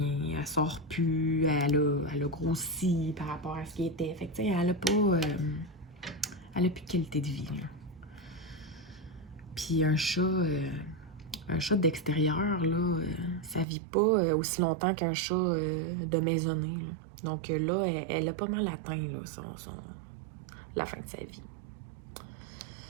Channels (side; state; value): left; drops out; at 13.7 s